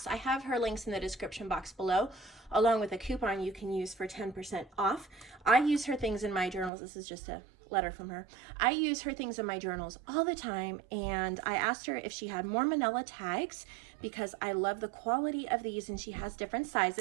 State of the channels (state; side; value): drops out; left; at 6.7 s